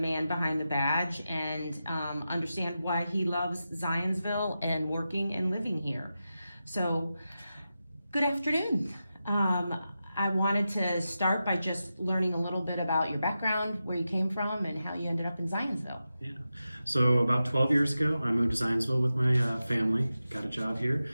behind the badge and understand why he loves Zionsville and working and living here. So, good afternoon. I wanted to start by just learning a little bit about your background, where you came from, and how you ended up in Zionsville. Yeah. So about 12 years ago, I moved to Zionsville with my family, got a job here,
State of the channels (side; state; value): both; inverted; correlation -0.91